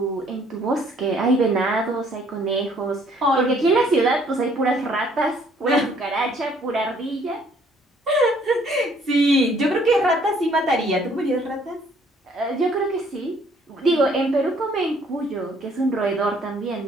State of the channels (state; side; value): normal; both; correlation 0.62